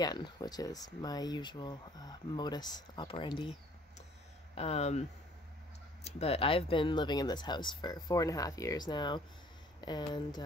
which is my usual modus operandi. But I've been living in this house for 4.5 years now, and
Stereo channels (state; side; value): normal; both; correlation 0.56